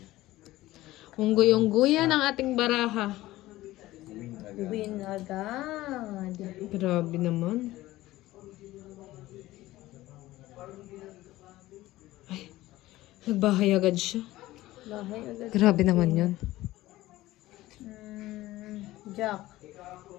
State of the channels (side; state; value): right; quieter; 16.9 dB